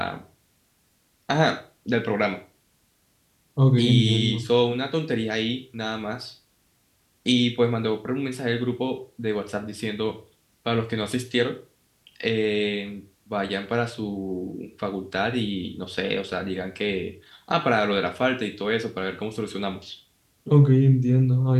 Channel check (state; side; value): identical; both; correlation 1.00